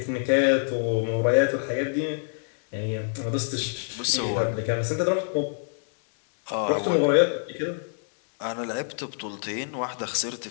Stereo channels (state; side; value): silent; right; digital silence